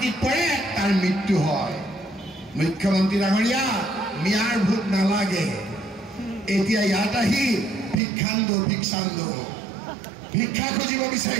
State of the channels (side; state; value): left; drops out; at 8.0 s